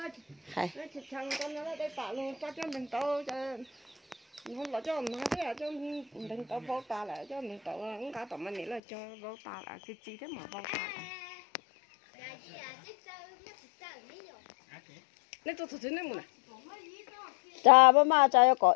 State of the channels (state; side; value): drops out; right; at 8.8 s